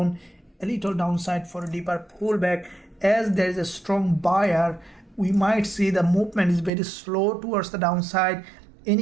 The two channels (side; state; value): left; drops out; at 6.7 s